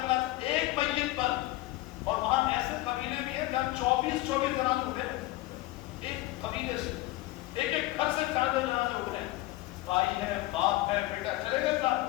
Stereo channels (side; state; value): right; quieter; 17.8 dB